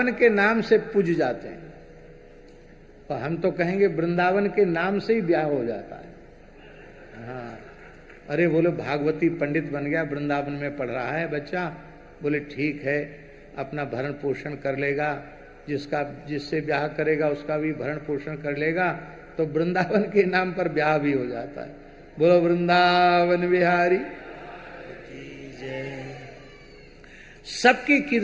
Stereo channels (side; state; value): both; identical; correlation 1.00